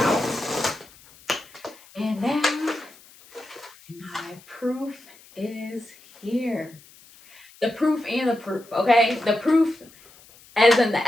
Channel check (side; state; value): left; noise; hiss, 24 dB below the sound